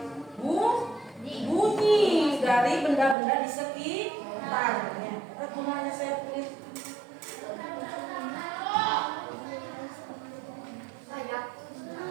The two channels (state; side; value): drops out; left; at 3.2 s